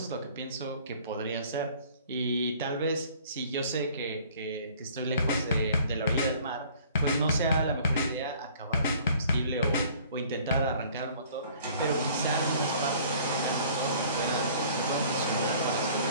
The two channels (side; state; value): both; inverted; correlation -0.53